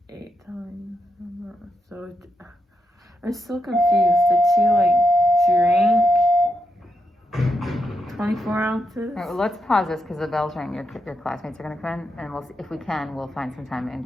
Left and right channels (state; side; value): normal; both; correlation 0.84